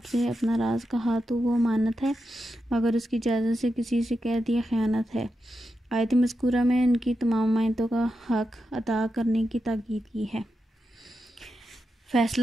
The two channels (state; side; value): normal; both; correlation 0.88